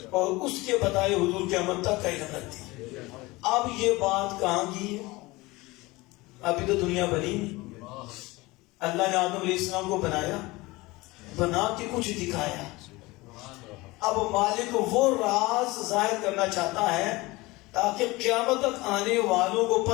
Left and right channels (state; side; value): quieter; right; 21.8 dB